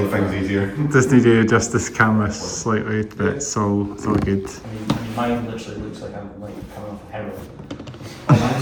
things easier. Just need to adjust this camera slightly, but it's all good. I mean, mine literally looks like I'm like coming off of heroin. Mine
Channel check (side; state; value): both; identical; correlation 1.00